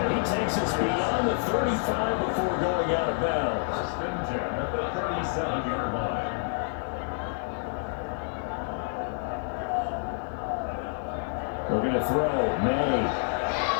he takes us beyond the 35 before going out of bounds. First and 10 at the 37-yard line. We're going to throw. May.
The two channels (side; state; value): right; silent; 59 dB below the other